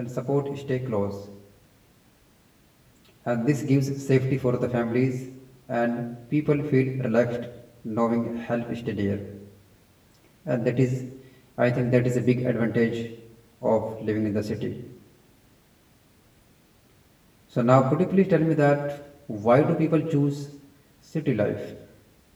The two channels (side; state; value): both; identical; correlation 1.00